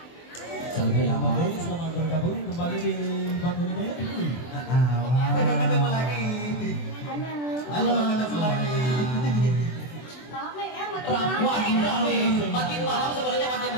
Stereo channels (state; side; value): late; right; 24 ms